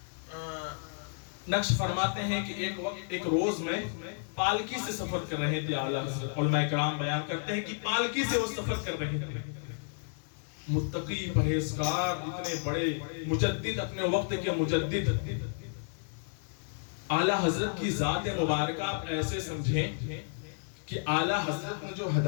ہیں کہ ایک روز میں پالکی سے سفر کر رہے تھے اعلیٰ حضرت۔ علماء کرام بیان کرتے ہیں کہ پالکی سے وہ سفر کر رہے تھے، متقی پرہیزگار اتنے بڑے مجدد، اپنے وقت کے مجدد اعلیٰ حضرت کی ذات مبارکہ آپ ایسے سمجھیں کہ اعلیٰ حضرت نے جو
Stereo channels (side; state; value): right; silent; 55 dB below the other